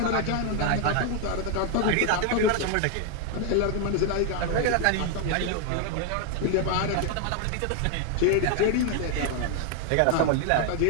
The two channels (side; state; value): both; different; correlation 0.01